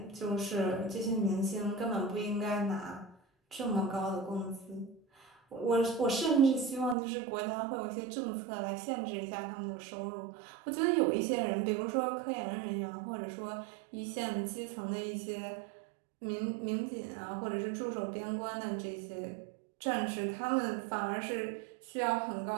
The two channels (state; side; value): drops out; left; at 7.0 s